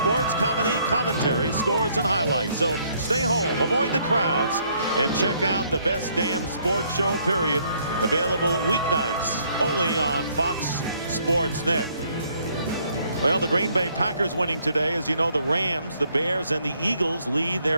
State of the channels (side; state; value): both; inverted; correlation -0.67